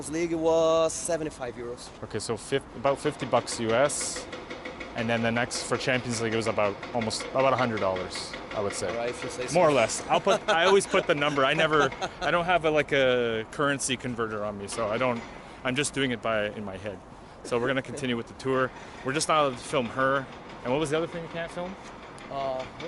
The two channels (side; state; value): both; identical; correlation 1.00